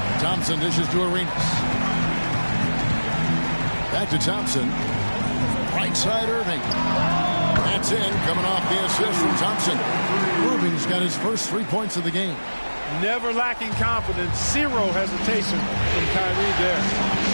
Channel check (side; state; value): both; inverted; correlation -1.00